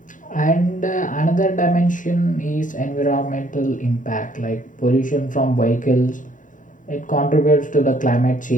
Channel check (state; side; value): late; right; 0.38 ms